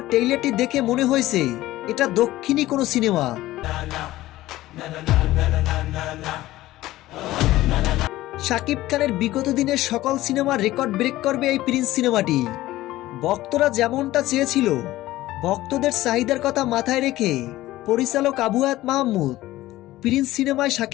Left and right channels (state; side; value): quieter; right; 16.3 dB